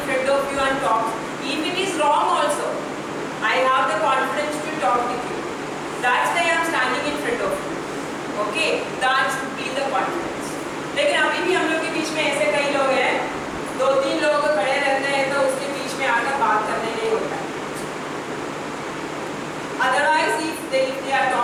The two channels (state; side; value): identical; both; correlation 1.00